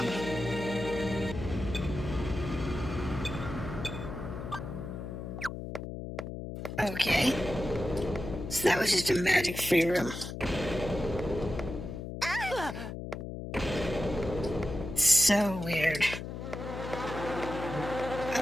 okay. So that was just a magic free room. So weird.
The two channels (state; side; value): noise; left; hum, 7 dB below the sound